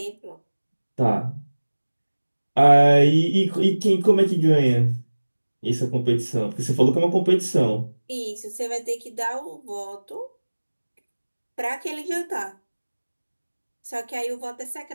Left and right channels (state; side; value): inverted; both; correlation -1.00